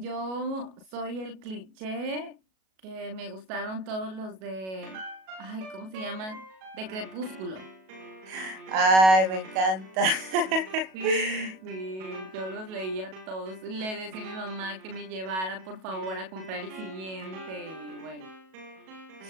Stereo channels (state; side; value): late; left; 37 ms